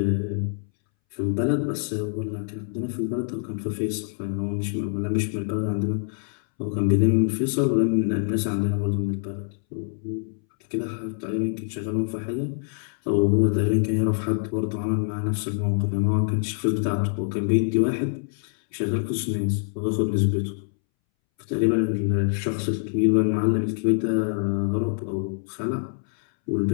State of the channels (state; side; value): silent; right; 62 dB below the other